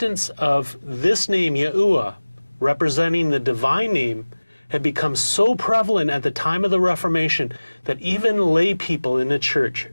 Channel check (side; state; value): both; inverted; correlation -1.00